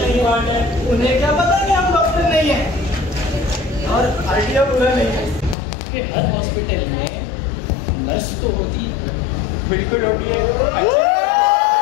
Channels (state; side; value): drops out; right; at 5.6 s